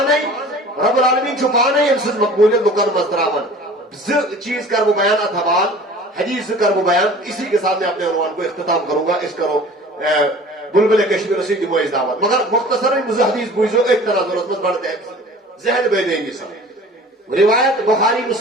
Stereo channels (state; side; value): normal; both; correlation 0.44